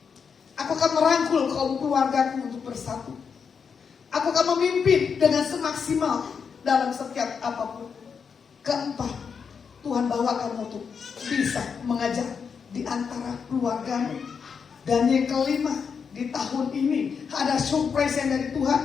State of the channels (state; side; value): quieter; right; 6.2 dB